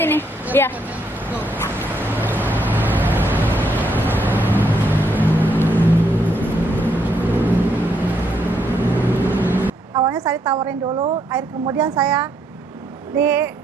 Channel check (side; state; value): both; normal; correlation 0.74